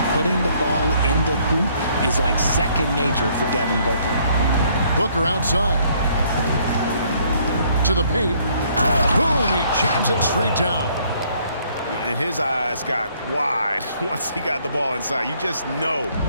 Putting the ball in the hoop is like second nature for Devin Booker. Booker outside. To the paint. Boom, he jams it straight down. And his eyes got wide once he got the ball inside. You just know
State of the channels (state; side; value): inverted; both; correlation -0.65